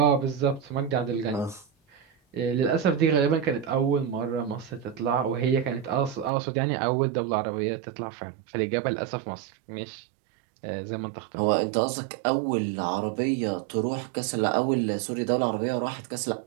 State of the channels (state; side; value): drops out; left; at 6.3 s